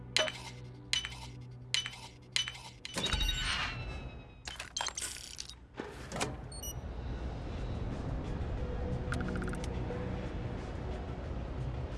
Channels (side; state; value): both; identical; correlation 1.00